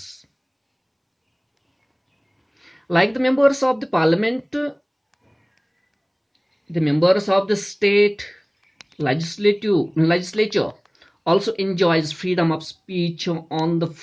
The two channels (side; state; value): both; identical; correlation 1.00